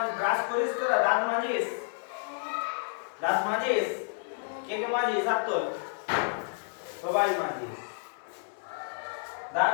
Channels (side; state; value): right; silent; digital silence